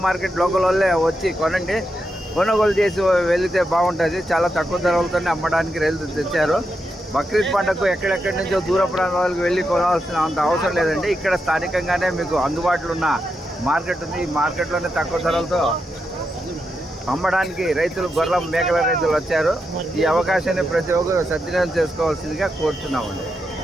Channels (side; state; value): both; normal; correlation 0.85